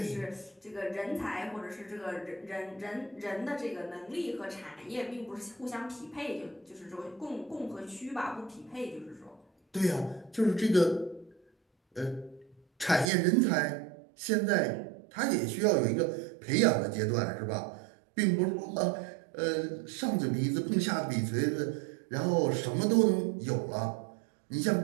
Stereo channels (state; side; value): drops out; left; at 13.1 s